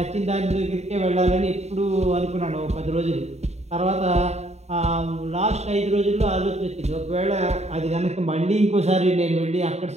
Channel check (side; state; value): left; late; 0.32 ms